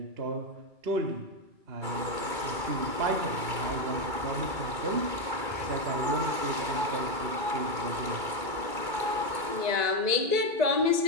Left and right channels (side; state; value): left; late; 2.2 ms